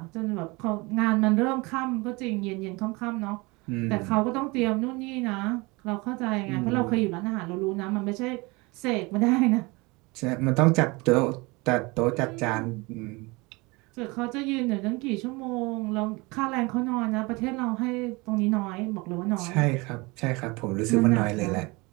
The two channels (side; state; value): left; quieter; 25.3 dB